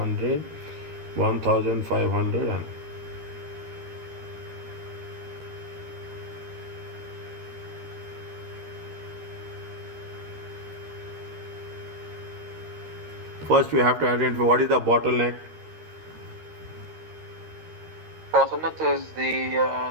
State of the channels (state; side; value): late; left; 13 ms